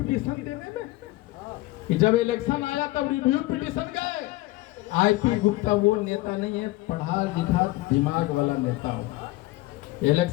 देने में, कि जब इलेक्शन आया तब रिव्यू पिटीशन गए। आईपी गुप्ता वो नेता नहीं है, पढ़ा लिखा दिमाग वाला नेता हो।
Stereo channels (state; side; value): quieter; right; 19.1 dB